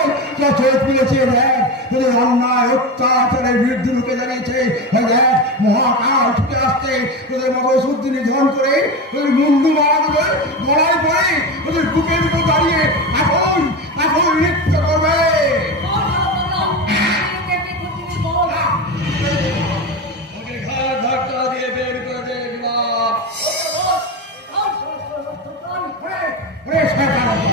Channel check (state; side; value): normal; both; correlation 0.21